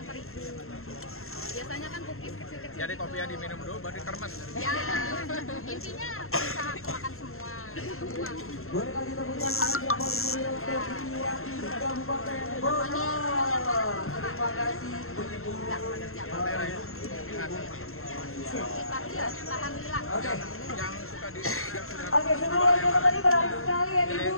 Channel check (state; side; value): late; right; 0.62 ms